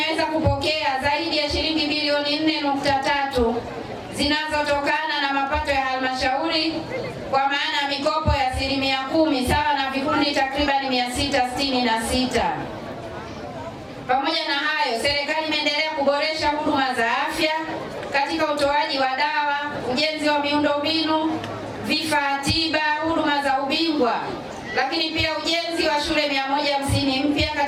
kupokea zaidi ya shilingi bilioni 4.3 zinazotokana na mapato ya halmashauri, kwa maana ya mikopo ya 10% sawa na vikundi takribani 666. Pamoja na hayo, serikali imeendelea kuboresha huduma za afya katika utoaji wa dawa, ujenzi wa miundombinu, vifaa tiba, huduma za ubingwa, lakini pia ujenzi wa shule 150 mpya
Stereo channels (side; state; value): both; identical; correlation 1.00